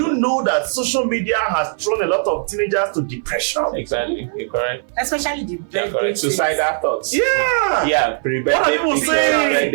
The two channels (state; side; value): silent; left; 59 dB below the other